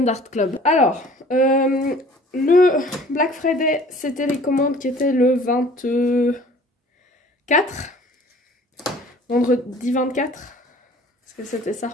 Art Club. Alors, le Black Friday, c'était les commandes qui étaient le 24, vendredi 24, est-ce que c'était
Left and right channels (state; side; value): normal; both; correlation 0.50